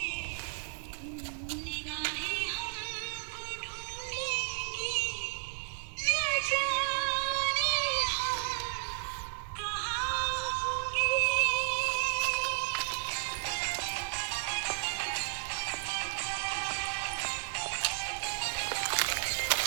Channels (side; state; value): left; silent; digital silence